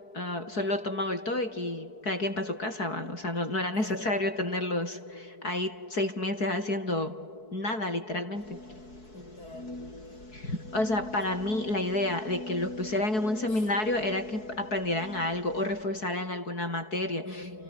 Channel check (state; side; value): late; right; 4.6 ms